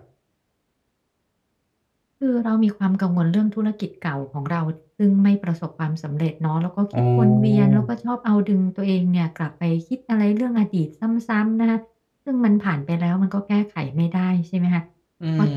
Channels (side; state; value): both; identical; correlation 1.00